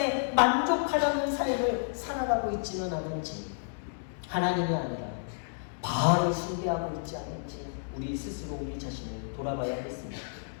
만족하려는 삶을 살아가고 있지는 않은지, 하나님이 아니라 바알을 숭배하고 있지 않은지 우리 스스로 우리 자신을 돌아봐야 하겠습니다.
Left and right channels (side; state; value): right; silent; digital silence